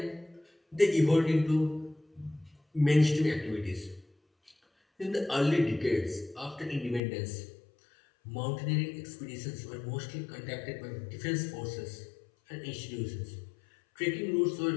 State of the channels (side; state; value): right; drops out; at 7.0 s